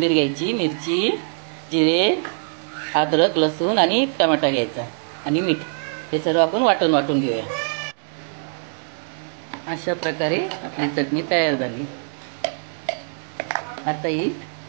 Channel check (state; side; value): silent; left; 56 dB below the other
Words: घ्यायची, मिरची, जिरे, अद्रक, लसूण आणि टमाटा घ्यायचा आणि मीठ. हे सर्व आपण वाटून वाटून घेऊया. अशा प्रकारे आपली चटणी तयार झाली. आता ही